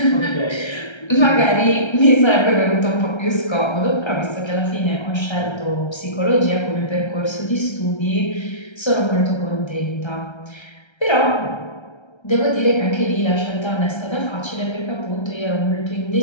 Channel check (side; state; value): right; late; 1.3 ms